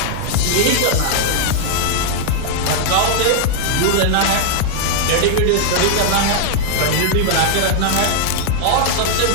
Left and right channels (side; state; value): both; different; correlation -0.01